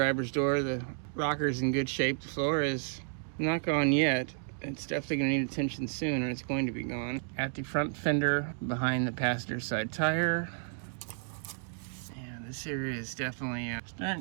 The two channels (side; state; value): left; silent; digital silence